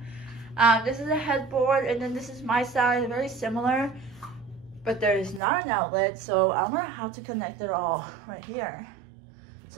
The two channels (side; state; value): left; drops out; at 5.4 s